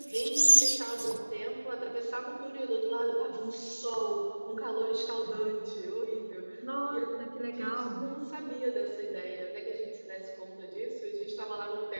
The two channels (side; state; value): both; inverted; correlation -1.00